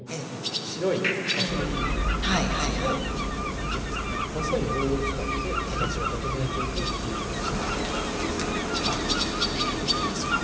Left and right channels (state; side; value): identical; both; correlation 1.00